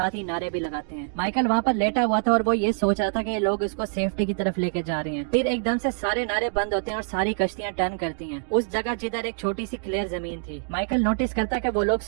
ही नारे भी लगाते हैं। माइकल वहाँ पर लेटा हुआ था और वो ये सोच रहा था कि ये लोग उसको सेफ्टी की तरफ लेके जा रहे हैं। फिर एकदम से सारे नारे बंद होते हैं और सारी कश्तियाँ टर्न करती हैं उस जगह जिधर एक छोटी सी क्लियर जमीन थी। माइकल नोटिस करता है कि वो लोग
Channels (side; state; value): left; silent; digital silence